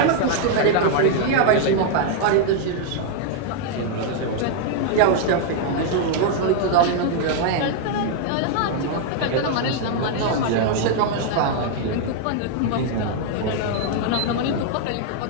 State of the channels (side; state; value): both; different; correlation 0.00